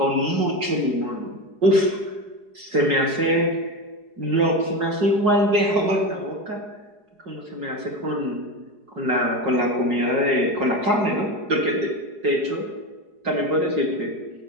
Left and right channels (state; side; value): late; left; 4.8 ms